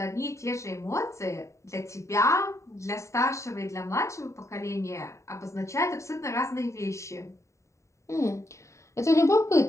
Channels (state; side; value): late; right; 0.14 ms